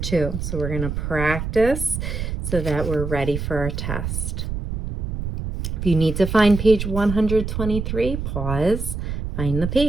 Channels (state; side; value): noise; right; rumble, 4 dB below the sound